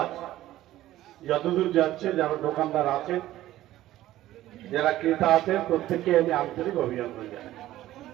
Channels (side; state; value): left; quieter; 14.7 dB